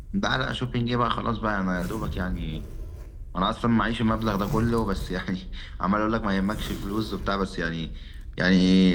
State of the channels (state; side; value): identical; both; correlation 1.00